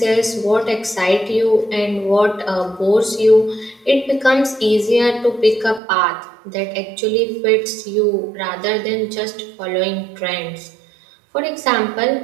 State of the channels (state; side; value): drops out; left; at 5.8 s